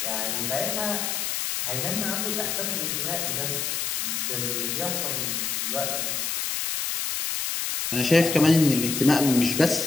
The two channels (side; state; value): left; noise; hiss, 1 dB below the sound